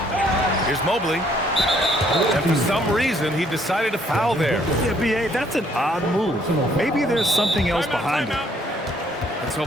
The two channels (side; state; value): both; normal; correlation 0.65